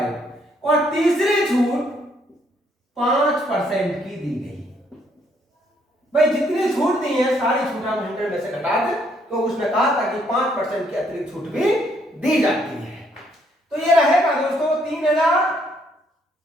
और तीसरी छूट 5% की दी गई। भाई, जितनी छूट दी है सारी छूट हम 100 में से घटा दें, तो उसने कहा था कि 5% की अतिरिक्त छूट भी दी जाती है। तो ये रहेगा दोस्तों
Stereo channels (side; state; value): both; normal; correlation 0.69